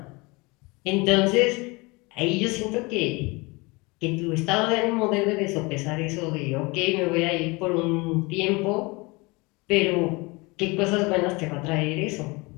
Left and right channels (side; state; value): right; quieter; 25.7 dB